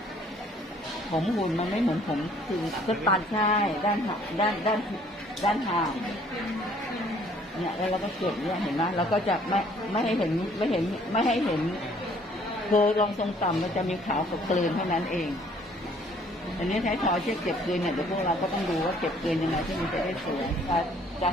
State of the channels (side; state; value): both; normal; correlation 0.59